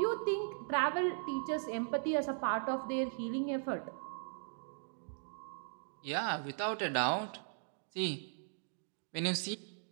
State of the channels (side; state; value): left; silent; digital silence